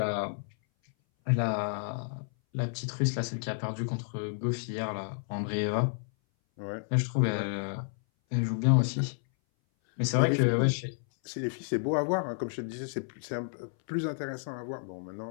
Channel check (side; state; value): right; silent; 57 dB below the other